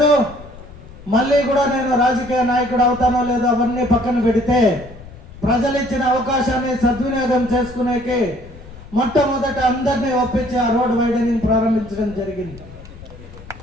మళ్ళీ కూడా నేను రాజకీయ నాయకుడు అవుతానో లేదో అవన్నీ పక్కన పెడితే ప్రజలు ఇచ్చిన అవకాశాన్ని సద్వినియోగం చేసుకునేకి మొట్టమొదట అందరినీ ఒప్పించి ఆ రోడ్ వైడనింగ్ ప్రారంభించడం జరిగింది.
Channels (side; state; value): left; noise; rumble, 17 dB below the sound